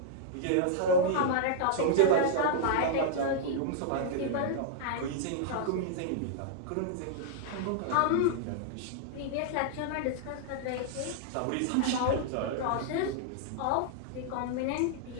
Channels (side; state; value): both; different; correlation -0.01